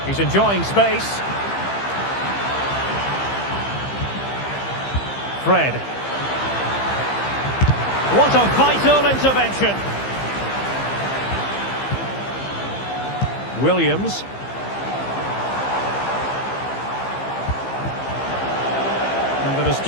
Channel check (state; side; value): late; right; 15 ms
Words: He's enjoying space. Fred. What a vital intervention. Williams. And an